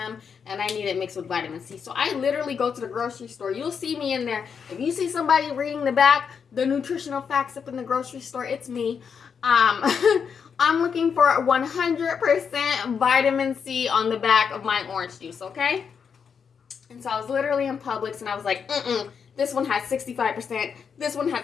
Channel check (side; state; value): right; quieter; 6.6 dB